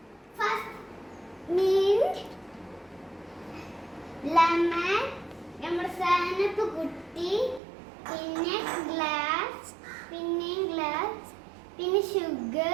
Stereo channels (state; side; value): drops out; left; at 7.6 s